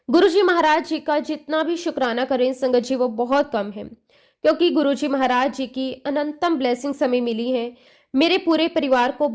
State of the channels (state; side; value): identical; both; correlation 1.00